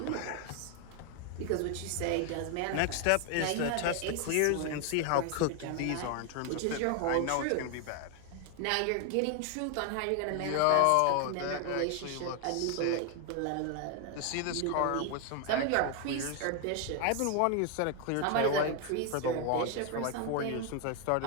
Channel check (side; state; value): both; different; correlation 0.01